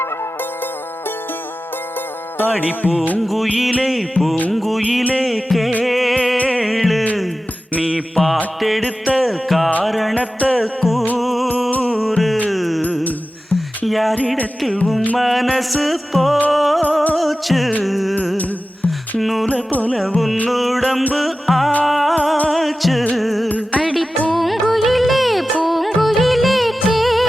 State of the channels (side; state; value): both; normal; correlation 0.94